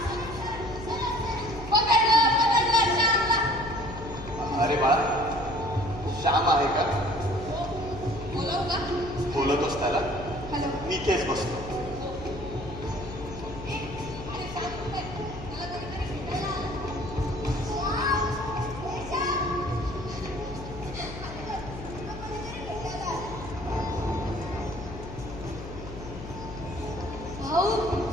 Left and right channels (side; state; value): left; noise; hum, 11 dB below the sound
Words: अरे बाळा, श्याम आहे का? बोलवू का? बोलतोस त्याला? हॅलो. मी इथेच बसतो. भाऊ,